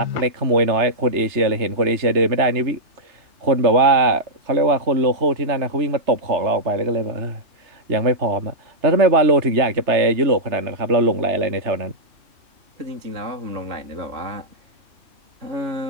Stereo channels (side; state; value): left; late; 3.3 ms